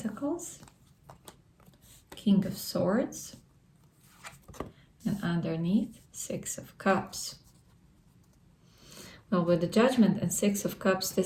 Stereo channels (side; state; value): both; identical; correlation 1.00